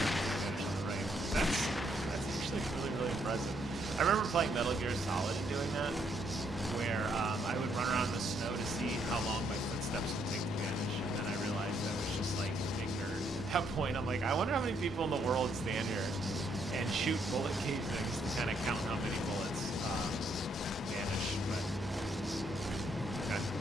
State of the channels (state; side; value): normal; both; correlation 0.72